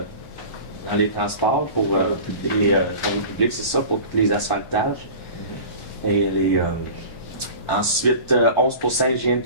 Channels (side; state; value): right; late; 1.1 ms